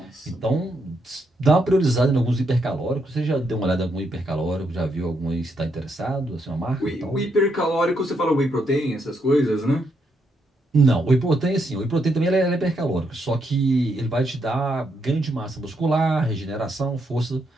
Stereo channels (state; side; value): normal; both; correlation 0.78